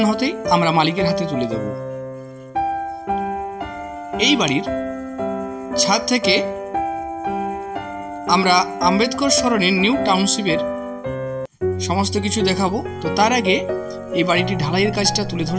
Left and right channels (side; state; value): both; identical; correlation 1.00